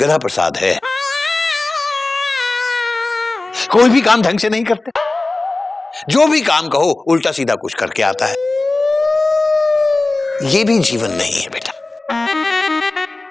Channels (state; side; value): quieter; right; 3.1 dB